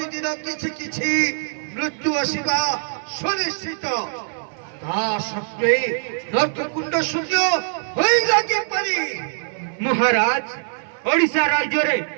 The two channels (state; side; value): silent; left; 57 dB below the other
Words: किछि किछि मृत्यु आसवा सुनिश्चित ता सत्वे नर्क कुंड शून्य होई लागी पारी महाराज ओडिशा राज्य रे